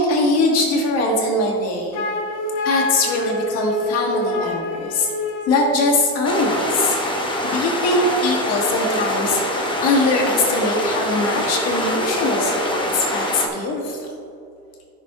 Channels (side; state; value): both; normal; correlation 0.11